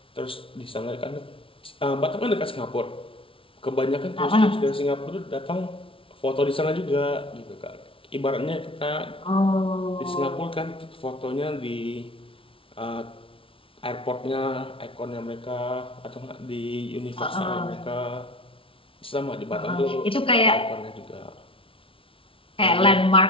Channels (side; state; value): right; late; 0.26 ms